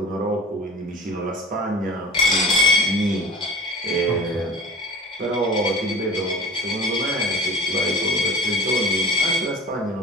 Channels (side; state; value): both; normal; correlation 0.38